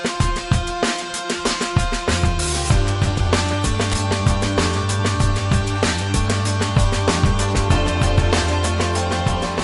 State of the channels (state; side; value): identical; both; correlation 1.00